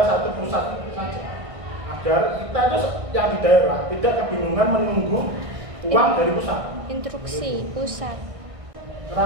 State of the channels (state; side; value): late; left; 1.6 ms